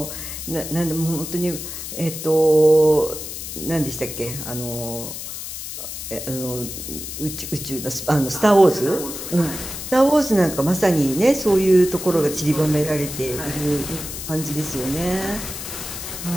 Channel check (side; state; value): left; noise; hiss, 8 dB below the sound